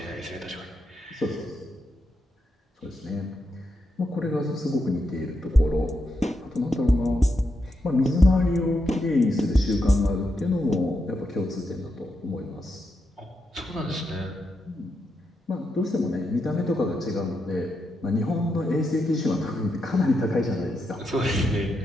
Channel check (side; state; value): both; normal; correlation 0.84